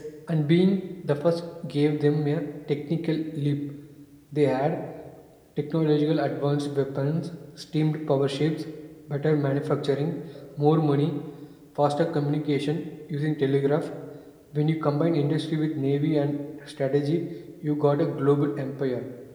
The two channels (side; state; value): both; identical; correlation 1.00